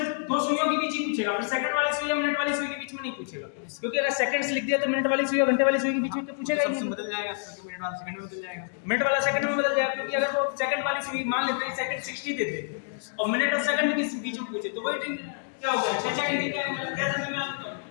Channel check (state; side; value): silent; right; digital silence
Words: दो सुइयों के बीच ही पूछेगा, फिर सेकंड वाली सुई या मिनट वाली सुई के बीच में नहीं पूछेगा, क्योंकि अगर सेकंड्स लिख दिया तो मिनट वाली सुई और घंटे वाली सुई के बीच में तो पूछेगा ही नहीं। बदल जाएगा, मिनट वाला सेकंड में बदल जाएगा। मिनट वाला सेकंड में बदल जाएगा, क्योंकि अगर वो सेकंड वाली सुई मान लेते हैं सेकंड 60 देते और मिनट और सेकंड के बीच में पूछे तो वही क्या हो गया? 6 डिग्री का